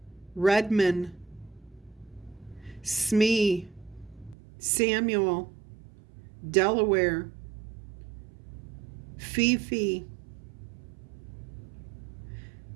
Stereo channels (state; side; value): drops out; left; at 4.4 s